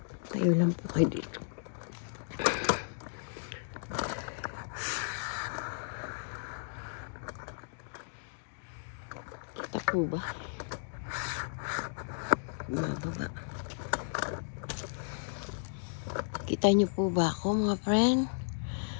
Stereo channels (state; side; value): silent; right; digital silence